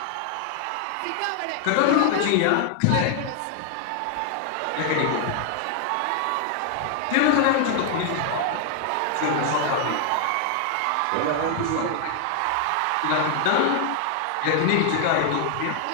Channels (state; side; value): different; both; correlation 0.00